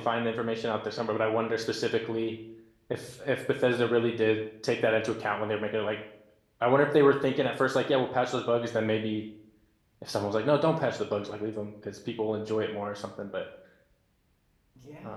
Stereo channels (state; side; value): identical; both; correlation 1.00